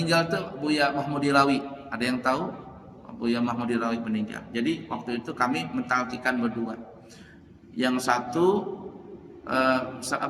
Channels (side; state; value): both; identical; correlation 1.00